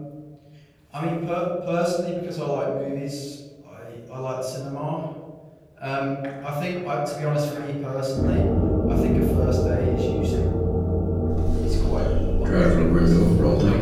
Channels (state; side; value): identical; both; correlation 1.00